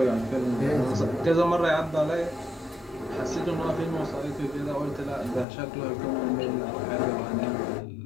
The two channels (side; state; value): right; drops out; at 5.5 s